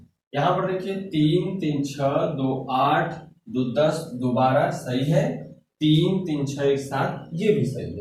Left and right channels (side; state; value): both; identical; correlation 1.00